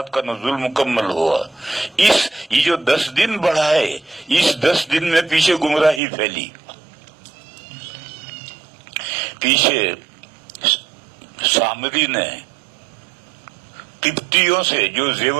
کا نزول مکمل ہوا۔ یہ جو 10 دن بڑھائے، اس 10 دن میں پیچھے گمراہی پھیلی۔ پیچھے سامری نے قبطیوں سے جو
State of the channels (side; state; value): left; drops out; at 6.0 s